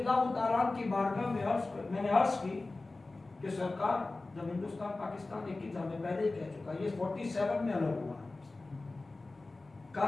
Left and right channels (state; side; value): quieter; right; 3.3 dB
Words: تعالیٰ کی بارگاہ میں نے عرض کی کہ سرکار جب ہندوستان پاکستان ایک ہی تھا, میں پہلے ہی کہہ چکا, یہ 47 میں الگ ہوا.